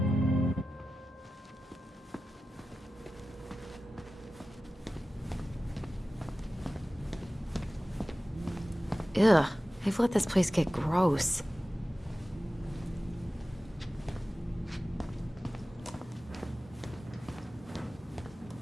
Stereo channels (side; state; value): both; normal; correlation 0.95